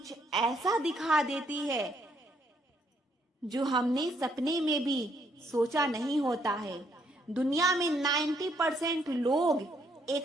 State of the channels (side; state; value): both; normal; correlation 0.71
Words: ऐसा दिखा देती है जो हमने सपने में भी सोचा नहीं होता है। दुनिया में 90% लोग